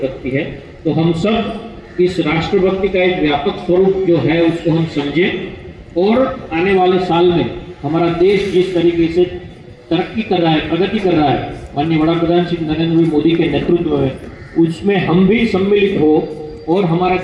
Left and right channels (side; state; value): both; identical; correlation 1.00